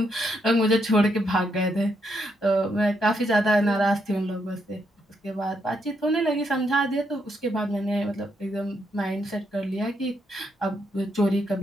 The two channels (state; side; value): normal; both; correlation 0.78